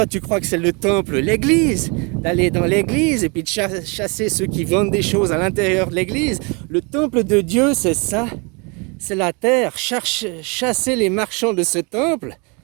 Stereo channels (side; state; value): left; quieter; 31.6 dB